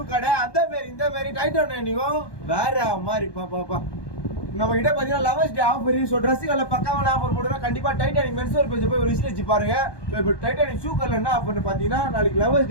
கடை. அந்த மாரி இந்த மாரி டைட்டானிக்கும் வேற மாதிரி பாப்பா நம்ம கிட்ட பாத்தீங்கன்னா லவர்ஸ் டே ஆஃபர். ஸோ ட்ரெஸ்ஸுகளில் பக்காவான ஆஃபர் போட்டுருக்கோம். கண்டிப்பா டைட்டானிக் மென்ஸ்வேர் பேஜ் போய் ஒரு விசிட் வச்சு பாருங்க. ஸோ இப்போ டைட்டானிக் ஷூ கடையில் என்ன ஆஃபர்னு பார்த்தீங்கன்னா, நாளைக்கு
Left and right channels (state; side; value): late; right; 1.2 ms